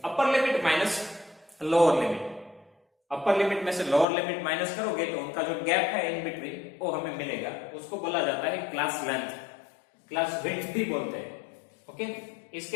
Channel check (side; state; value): right; drops out; at 4.0 s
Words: upper limit minus lower limit. Upper limit में से लोअर लिमिट माइनस करोगे तो उनका जो गैप है इन बिटवीन वो हमें मिलेगा, उसको बोला जाता है क्लास लेंथ, क्लास विड्थ भी बोलते हैं। ओके, इसके